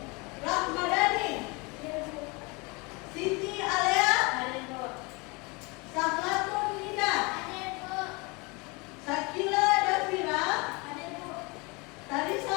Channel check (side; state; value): right; quieter; 27.7 dB